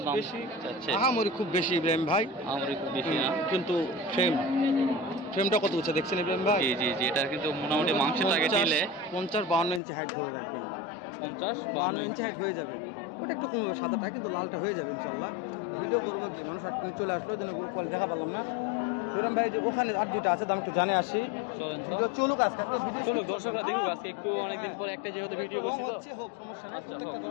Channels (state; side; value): drops out; right; at 9.8 s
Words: দাম চাচ্ছে। আহামরি খুব বেশি ইব্রাহিম ভাই, আমার খুব বেশি না, কিন্তু ফ্রেমটা কত উঁচু দেখছেন ইব্রাহিম ভাই? জি জি জি। এটা কিন্তু মোটামুটি মাংসের টার্গেট দিলে 50-52 ইঞ্চি হাইট ধরে রাখবেন। 50-52 ইঞ্চি হাইট হয়ে যাবে। ওটা একটু কমবে, সাদাটা কিন্তু লালটা হয়ে যাবে ইনশাল্লাহ। ভিডিও করবো কি, মানুষ আটকে চলে আসলো, যেন গ্রুপ কল দেখা পারলাম না। ইব্রাহিম ভাই যে ওখানে আর দুইটা আছে, দাম একটু জানে আসি। চলেন তো, চলুক আজকে, চলুক, দর্শকরা দেখুক আজকে। একটু অনেকদিন পর একটা যেহেতু ভিডিও করছি তো, হোক সমস্যা নেই। আচ্ছা, প্রত্যেকটা